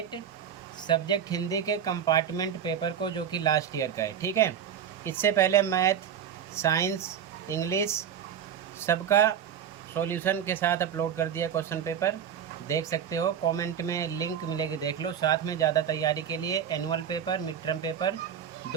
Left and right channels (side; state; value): left; quieter; 8.6 dB